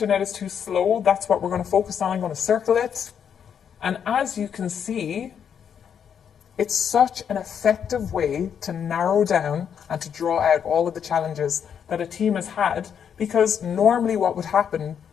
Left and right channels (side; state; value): right; quieter; 8.0 dB